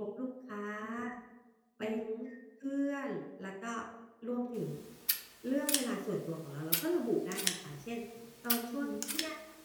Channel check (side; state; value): both; identical; correlation 1.00